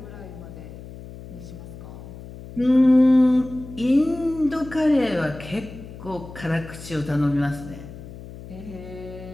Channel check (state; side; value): noise; left; hum, 14 dB below the sound